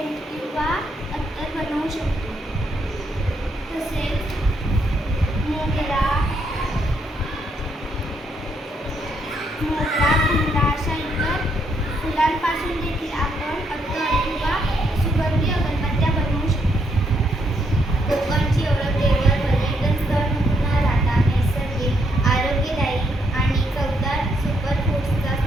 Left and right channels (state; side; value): normal; both; correlation 0.75